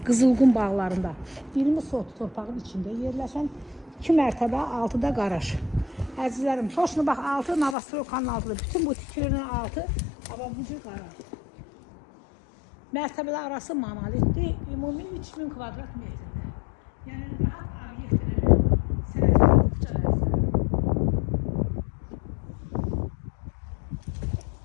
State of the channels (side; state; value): right; drops out; at 7.8 s